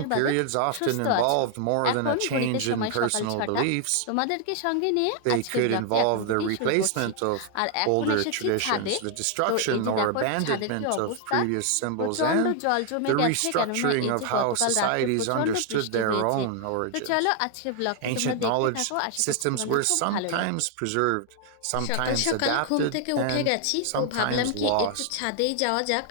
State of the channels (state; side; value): different; both; correlation 0.00